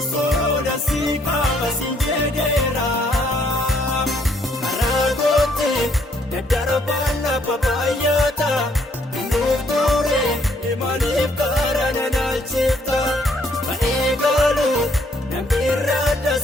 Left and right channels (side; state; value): both; normal; correlation 0.68